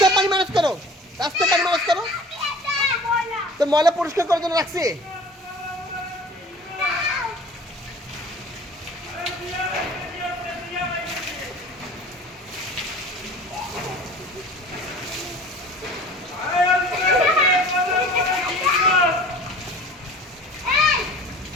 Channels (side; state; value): both; normal; correlation 0.44